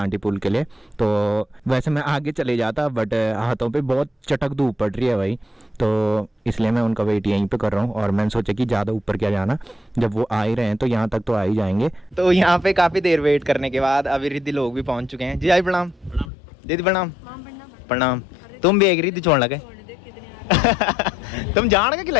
पुल के लिए। तो वैसे मैं आगे चले जाता बट हाथों पे बहुत चटक धूप पड़ रही है भाई, तो इसलिए मैं उनका वेट यहीं पे कर रहा हूँ। और मैंने सोचा कि ज़्यादा ऊपर क्या जाना, जब वो आ ही रहे हैं तो यहाँ तक तो आ ही जाएंगे। तो यहाँ पे काफ़ी देर वेट करने के बाद अभी रिद्धि लोग भी पहुँच चुके हैं। जी आई प्रणाम। दीदी प्रणाम। प्रणाम। तुम भी एक रिद्धि छोड़ लगे तुम जान के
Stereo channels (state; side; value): drops out; right; at 16.3 s